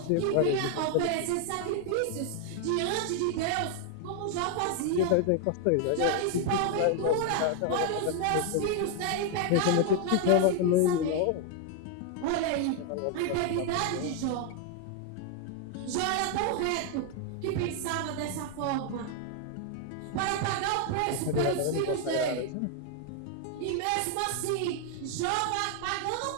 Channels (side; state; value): both; different; correlation 0.00